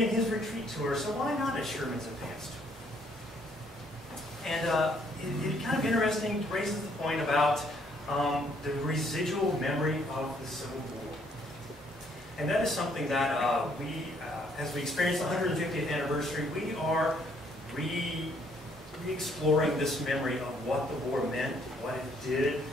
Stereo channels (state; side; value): normal; both; correlation 0.67